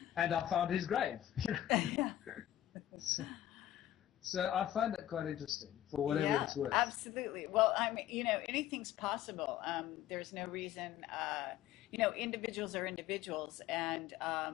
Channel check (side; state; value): right; quieter; 12.6 dB